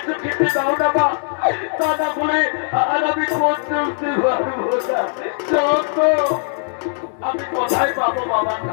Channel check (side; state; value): right; silent; 66 dB below the other